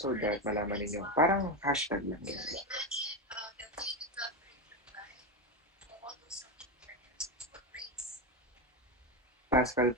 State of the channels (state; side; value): normal; both; correlation 0.13